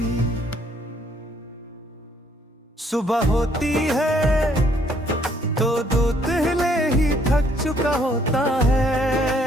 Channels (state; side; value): normal; both; correlation 0.66